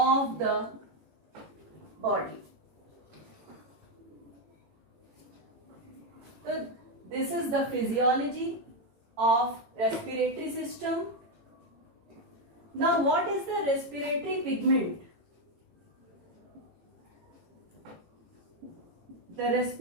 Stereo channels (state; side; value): late; left; 18 ms